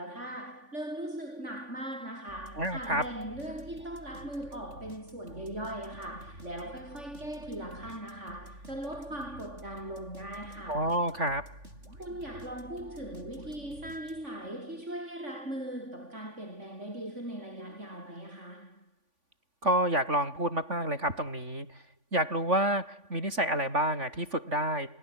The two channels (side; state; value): left; late; 3.5 ms